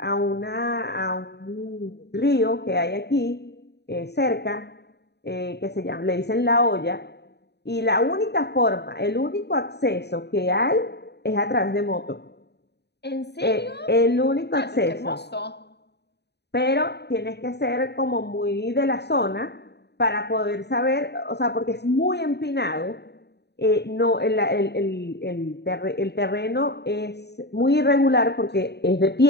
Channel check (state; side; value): late; right; 0.49 ms